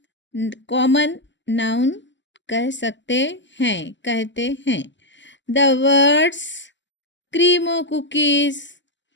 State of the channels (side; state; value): right; late; 0.54 ms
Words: कॉमन नाउन कह सकते हैं, कहते हैं। The words Creamo cookies.